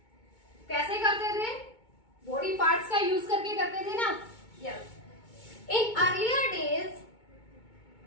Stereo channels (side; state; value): right; late; 2.2 ms